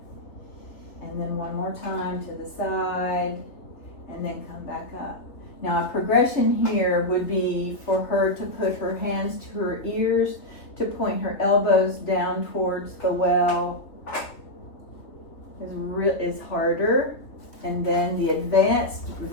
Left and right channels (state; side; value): late; right; 3.2 ms